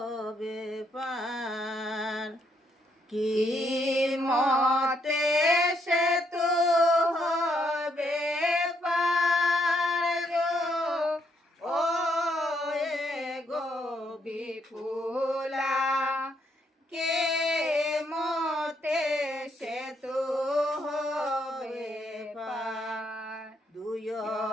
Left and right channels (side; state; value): both; normal; correlation 0.74